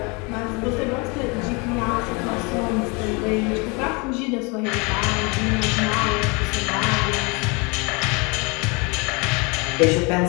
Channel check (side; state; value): right; quieter; 29.2 dB